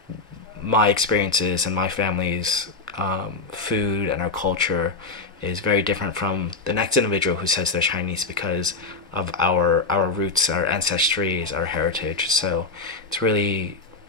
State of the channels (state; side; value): quieter; right; 3.8 dB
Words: my experiences and my family's food and our culture is very different from the next individual who says they're Chinese, because of our roots, our ancestries, our heritage. So it's really